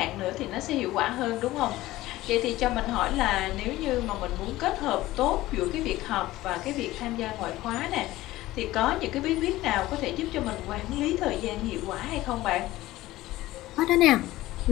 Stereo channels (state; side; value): quieter; right; 16.9 dB